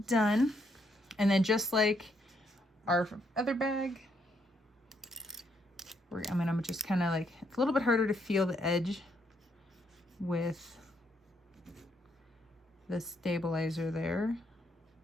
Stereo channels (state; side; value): normal; both; correlation 0.74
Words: done. And then just like our other bag, I'm just kind of like, it's a little bit harder to feel the edge with the stabilizer there.